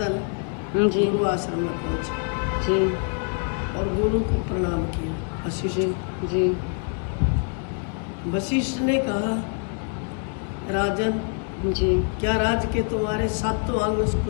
जी। गुरु आश्रम में पहुंचे जी। और गुरु को प्रणाम किया। वशिष्ठ जी। वशिष्ठ ने कहा, राजन, जी। क्या राज्य के तुम्हारे 7 अंग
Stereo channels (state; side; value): quieter; right; 39.5 dB